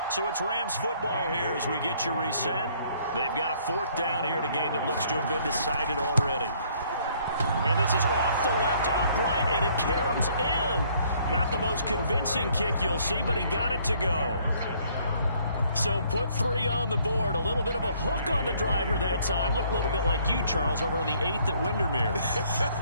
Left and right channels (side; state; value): both; inverted; correlation -0.63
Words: So it's Rams football here as we get you reset. They've got a 4th down here in a game that looks to have been decided already. And this is off the left upright, and it caroms in. Not the most convincing kick you'll see, but he got it to go. So put 3 on the board. A little bit of a hook on the driver that time. Looked a little bit like you, Charles, over on the 8th at Windermere.